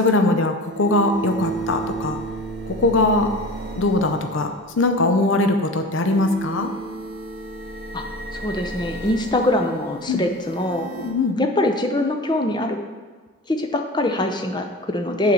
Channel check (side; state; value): both; normal; correlation 0.35